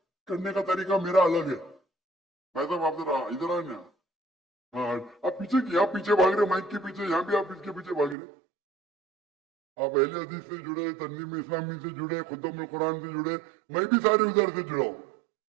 करने का तरीका मेरा अलग है। भाई साहब आप जरा इधर आए ना। हाँ आप पीछे भाग रहे, माइक के पीछे, यहाँ भी आप इसके पीछे भाग रहे। आप अहले हदीस से जुड़े, तंजीम इस्लामी से जुड़े, खुतम कुरान से जुड़े, मैं भी सारे उधर से जुड़ा हूँ।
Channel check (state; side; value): drops out; left; at 8.2 s